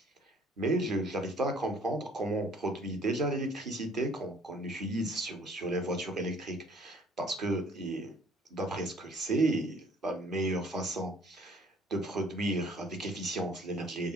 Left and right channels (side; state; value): both; normal; correlation 0.57